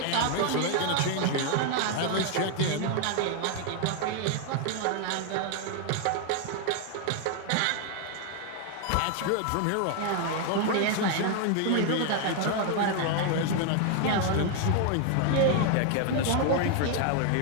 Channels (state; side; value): different; both; correlation 0.00